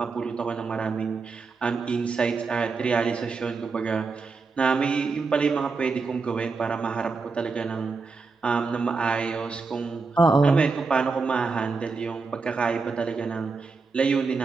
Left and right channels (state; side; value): quieter; left; 4.4 dB